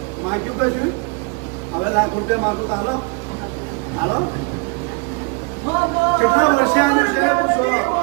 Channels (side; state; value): left; quieter; 30.5 dB